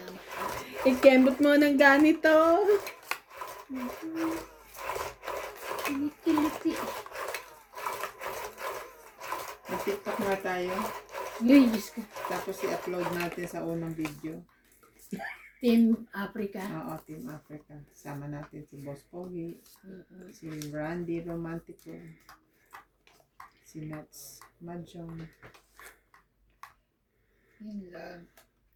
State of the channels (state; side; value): identical; both; correlation 1.00